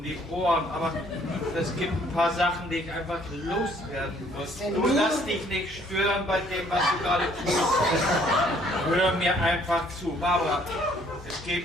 die Ohren, aber es gibt ein paar Sachen, die ich einfach loswerden muss. Du lass dich nicht stören bei dem, was du gerade tust. Hör mir einfach zu. Barbara, es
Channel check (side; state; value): both; normal; correlation 0.62